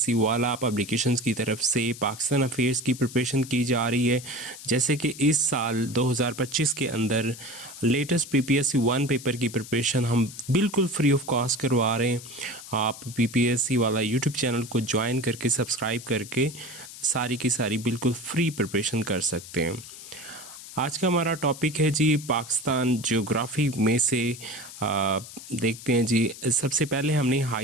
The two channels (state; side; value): noise; left; hiss, 14 dB below the sound